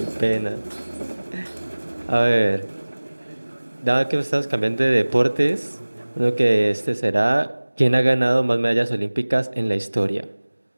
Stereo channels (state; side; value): inverted; both; correlation -1.00